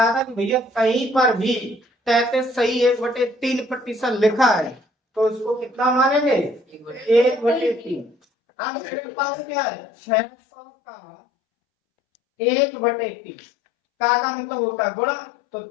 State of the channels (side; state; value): right; drops out; at 8.2 s